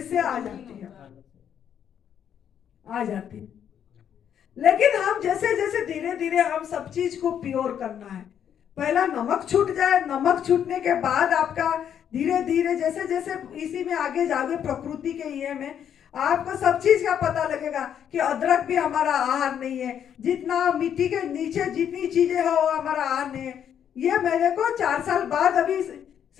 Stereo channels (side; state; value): right; quieter; 9.0 dB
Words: आ जाती है, आ जाती है। लेकिन हम जैसे जैसे धीरे धीरे हम सब चीज को प्योर करना है। पहला नमक छूट जाए, नमक छूटने के बाद आपका धीरे धीरे जैसे जैसे इसी में आगे जाओगे प्रकृति के ये में आपको सब चीज का पता लगेगा कि अदरक भी हमारा आहार नहीं है, जितना मिट्टी के नीचे जितनी चीजें है वो हमारा आहार नहीं है। ये मेरे को 4 साल बाद अभी